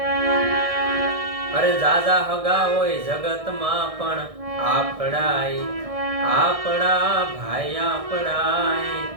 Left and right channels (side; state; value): left; late; 1.6 ms